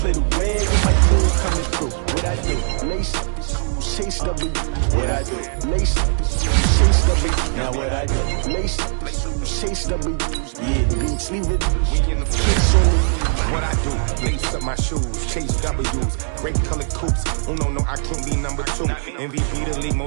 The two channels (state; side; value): silent; left; 66 dB below the other